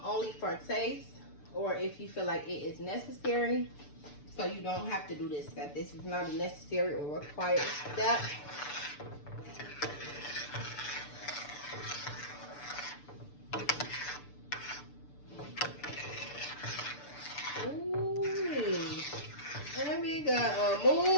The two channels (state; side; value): late; right; 6.8 ms